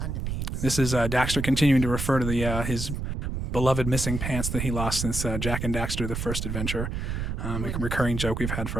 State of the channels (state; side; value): noise; right; rumble, 3 dB below the sound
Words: This is Daxter continuing to refer to his beloved missing pants that he lost since Jak and Daxter, the first adventure. A recurring joke we've had